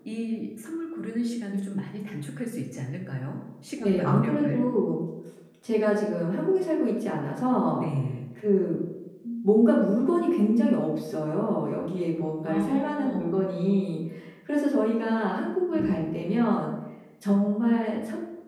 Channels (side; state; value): both; identical; correlation 1.00